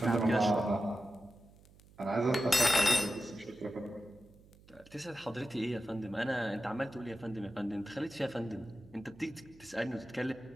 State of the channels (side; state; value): right; noise; hum, 25 dB below the sound